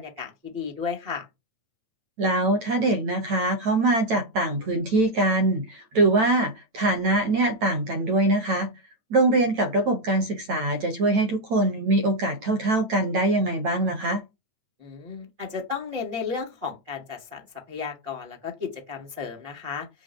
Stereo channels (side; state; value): left; late; 9.0 ms